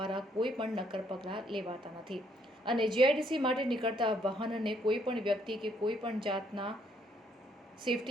કોઈ પણ નક્કર પગલાં લેવાતા નથી અને જીઆઈડીસી માટે નીકળતા વાહનને કોઈ પણ વ્યક્તિ કે કોઈ પણ જાતના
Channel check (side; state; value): both; normal; correlation 0.69